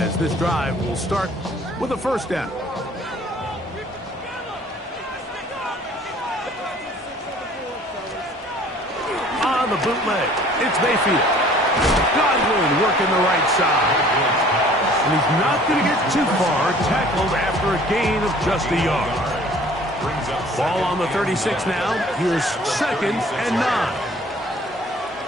this drive will start with a 1st down. On the bootleg, it's Mayfield. Godwin working the right side. And he's not going to get too far, tackled after a gain of just a yard. Ball on the 36 now. Here's 2nd and 9.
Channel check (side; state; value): both; normal; correlation 0.53